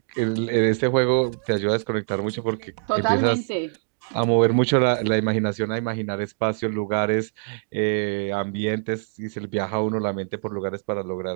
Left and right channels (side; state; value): left; silent; digital silence